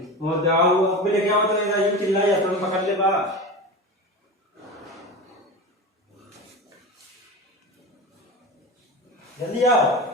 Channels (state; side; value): normal; both; correlation 0.27